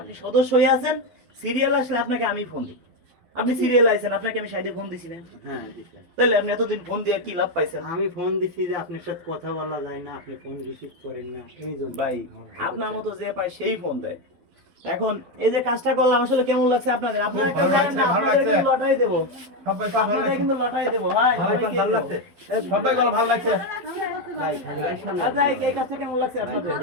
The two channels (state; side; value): late; left; 11 ms